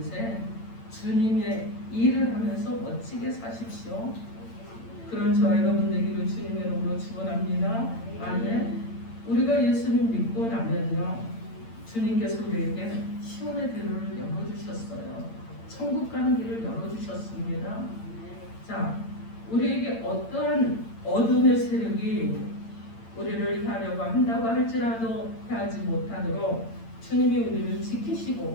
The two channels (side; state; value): right; late; 8.8 ms